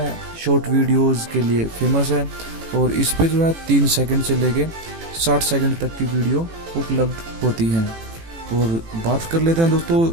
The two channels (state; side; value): late; left; 18 ms